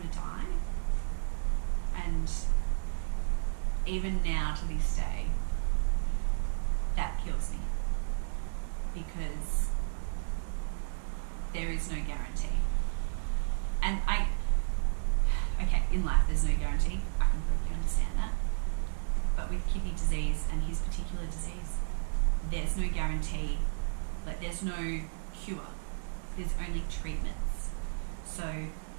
to die? And even now to this day, that kills me because there is no guarantee. And in life there's no guarantee, I completely understand that. But with kidney disease and his particular disease, there's no guarantee. Like, there's no cure, there's only treatments. So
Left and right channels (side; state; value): left; silent; 56 dB below the other